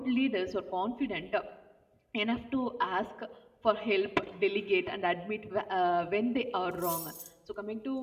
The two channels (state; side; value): identical; both; correlation 1.00